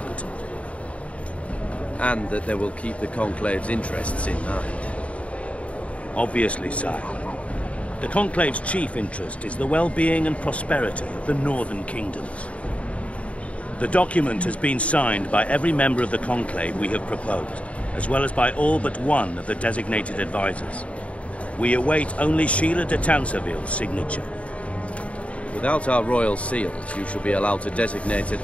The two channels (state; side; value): late; right; 0.065 ms